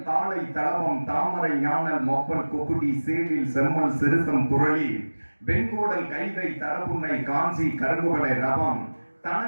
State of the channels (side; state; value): both; inverted; correlation -1.00